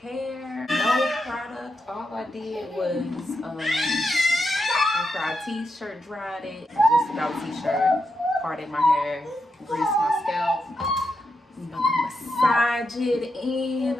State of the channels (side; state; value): both; normal; correlation 0.85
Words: hair, no product. All I did was after our t-shirt dried it, just about t-shirt, parted my hair, greased my scalp. I'm about to massage it in